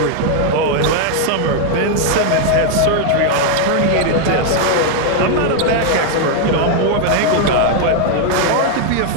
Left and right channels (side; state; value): both; different; correlation 0.00